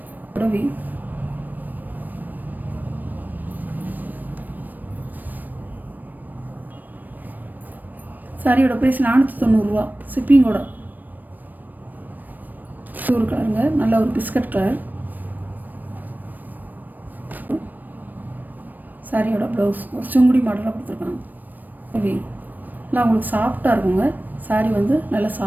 வியூ. சாரியோட ப்ரைஸ் 490 ரூபா, ஷிப்பிங்கோட. ஒரு கலருங்க, நல்ல ஒரு பிஸ்கட் கலர். சாரியோட ப்ளவுஸ் ஒரு சுங்குடி மாடலாக கொடுத்துருக்காங்க. நல்லா உங்களுக்கு சாஃப்டாக இருக்குங்க. சாரி வந்து நல்லா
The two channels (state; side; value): late; left; 0.088 ms